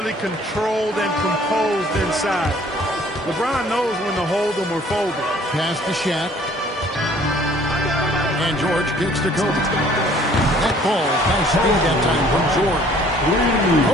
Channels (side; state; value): both; normal; correlation 0.56